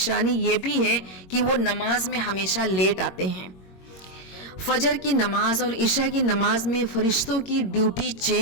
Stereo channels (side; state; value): right; late; 22 ms